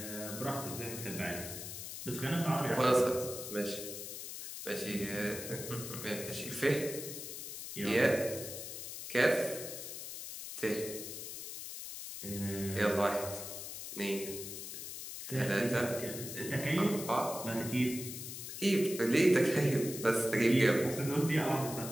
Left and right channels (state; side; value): noise; left; hiss, 8 dB below the sound